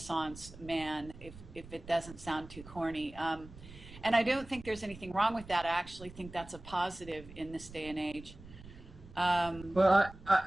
man, if it doesn't sound too corny. And I don't think there's anything wrong with that. I actually think that's a positive in this day and age. Well,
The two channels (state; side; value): noise; right; rumble, 17 dB below the sound